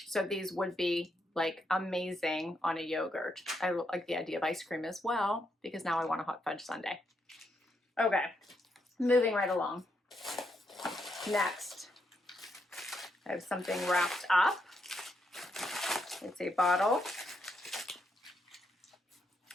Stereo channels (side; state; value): both; normal; correlation 0.79